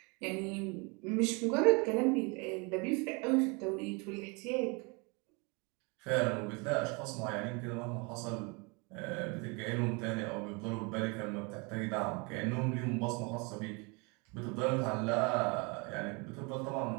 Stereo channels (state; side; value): quieter; left; 30.3 dB